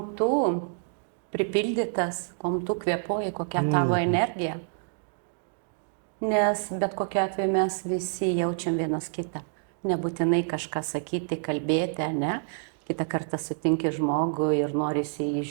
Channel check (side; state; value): left; silent; digital silence